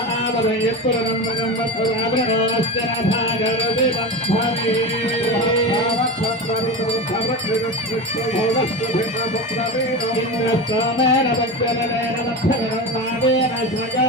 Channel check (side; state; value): both; normal; correlation 0.24